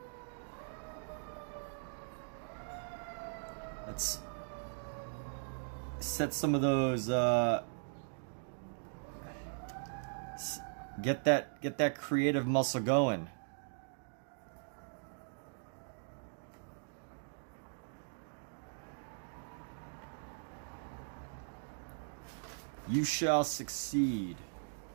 Let's set some of those get that creative muscle going. You shall succeed.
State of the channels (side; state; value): left; silent; digital silence